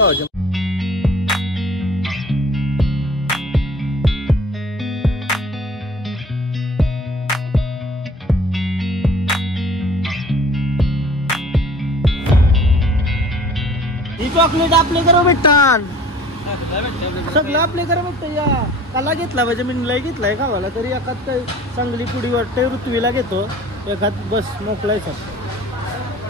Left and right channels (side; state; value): both; normal; correlation 0.47